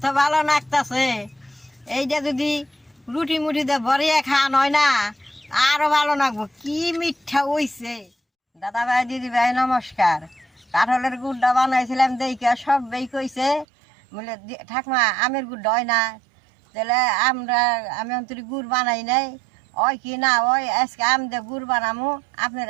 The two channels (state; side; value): drops out; left; at 13.7 s